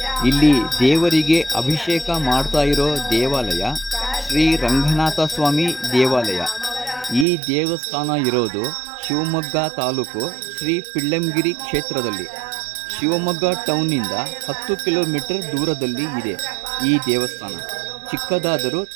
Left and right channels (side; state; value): left; drops out; at 7.2 s